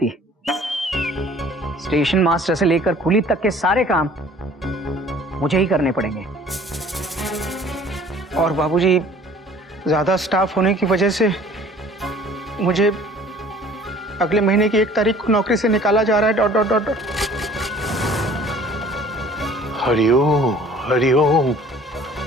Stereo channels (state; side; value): normal; both; correlation 0.51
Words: है। स्टेशन मास्टर से लेकर कुली तक के सारे काम मुझे ही करने पड़ेंगे। और बाबूजी, ज्यादा स्टाफ होने की वजह से मुझे अगले महीने की 1 तारीख को नौकरी से निकाला जा रहा है। Dot dot dot dot. Hariom Hariom,